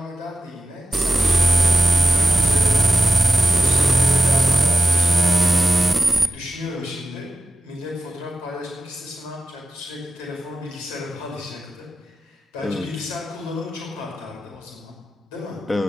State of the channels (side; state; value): both; normal; correlation 0.95